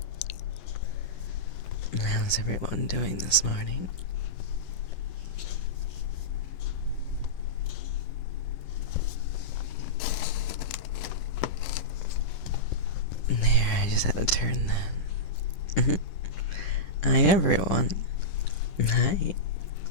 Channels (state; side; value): late; right; 10 ms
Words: How's everyone doing this morning? There, I just had to turn that. Hi everyone. Hi.